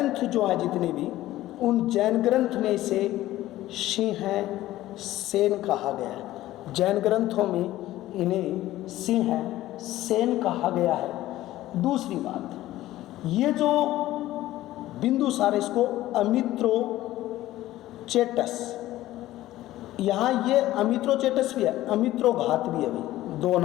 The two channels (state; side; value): quieter; right; 15.3 dB